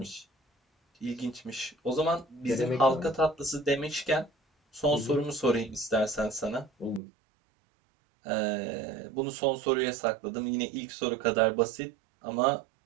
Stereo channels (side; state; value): left; drops out; at 7.0 s